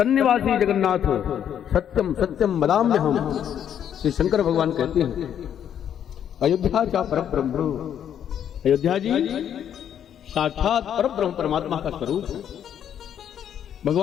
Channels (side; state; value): right; quieter; 9.4 dB